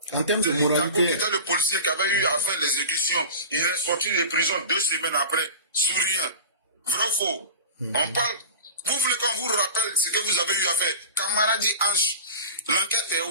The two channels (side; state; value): both; inverted; correlation -0.32